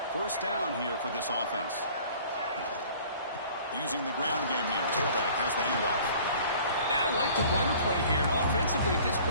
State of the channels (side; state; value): both; inverted; correlation -0.49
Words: First down here for this offense. Using the ground game here. Tailback has the handoff. I like the run play here. And offensively, at this